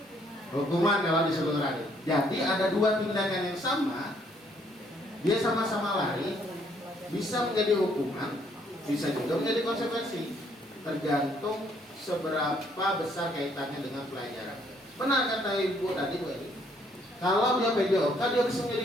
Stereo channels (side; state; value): both; normal; correlation 0.67